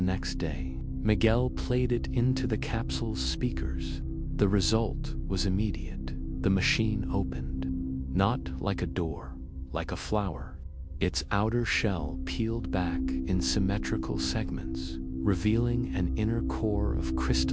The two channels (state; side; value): identical; both; correlation 1.00